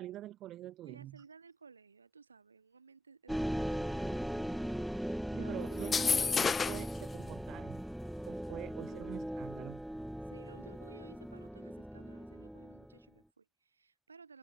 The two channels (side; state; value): both; normal; correlation 0.89